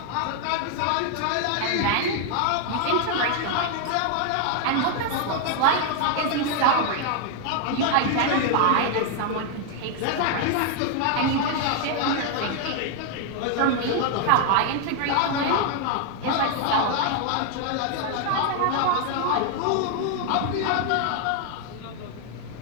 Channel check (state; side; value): different; both; correlation 0.00